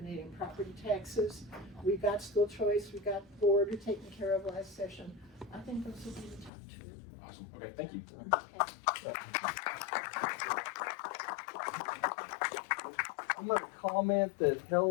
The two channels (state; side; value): drops out; right; at 6.5 s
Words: property taxes. We got school choice, we got border taken care of last session. I think those will be the top two. Awesome. Okay, thank you. I'm going to comment that